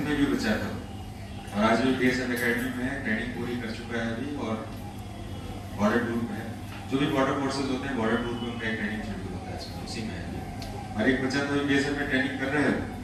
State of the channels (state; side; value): identical; both; correlation 1.00